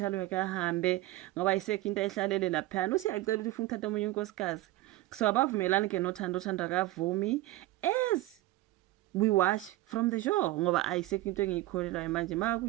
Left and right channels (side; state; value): left; quieter; 17.1 dB